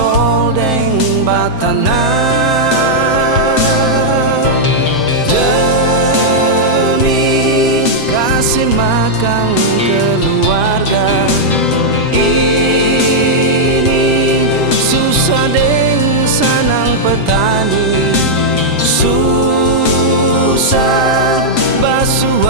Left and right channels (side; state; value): right; late; 7.7 ms